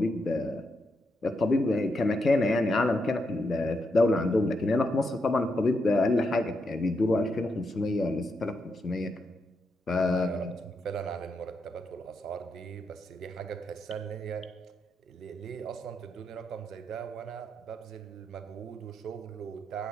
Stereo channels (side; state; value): both; normal; correlation 0.82